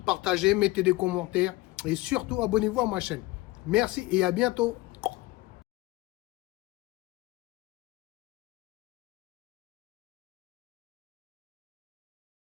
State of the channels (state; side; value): quieter; right; 19.2 dB